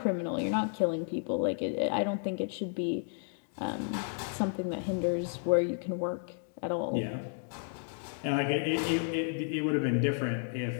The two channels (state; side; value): silent; right; 56 dB below the other